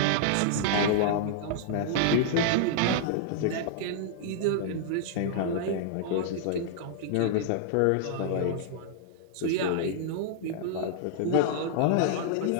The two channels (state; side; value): different; both; correlation -0.01